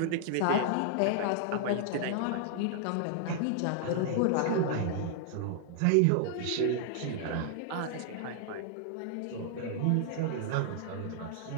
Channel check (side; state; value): both; different; correlation 0.00